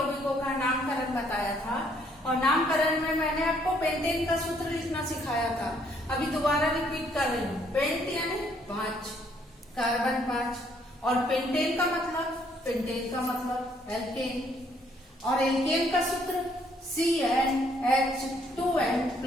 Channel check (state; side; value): normal; both; correlation 0.67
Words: का नामकरण बताया था और नामकरण में मैंने आपको पेंटेन का सूत्र लिखना सिखाया था। अभी दोबारा रिपीट कर रही हूँ। पेंट यानी 5, कार्बन 5 और पेंटेन का मतलब एल्केन और एल्केन का सूत्र